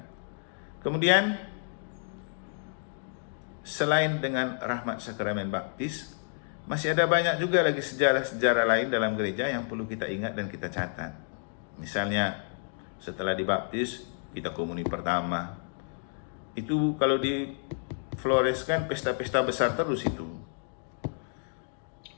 Kemudian, selain dengan rahmat sakramen baptis, masih ada banyak juga lagi sejarah-sejarah lain dalam gereja yang perlu kita ingat dan kita catat. Misalnya, setelah dibaptis, kita komuni pertama. Itu kalau difloreskan pesta-pesta besar terus itu.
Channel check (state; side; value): silent; right; digital silence